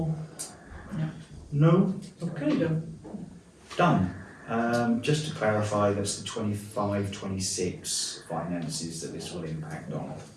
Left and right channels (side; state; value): both; identical; correlation 1.00